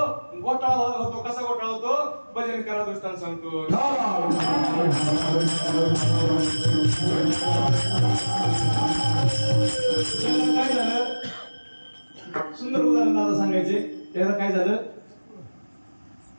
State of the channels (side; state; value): both; inverted; correlation -1.00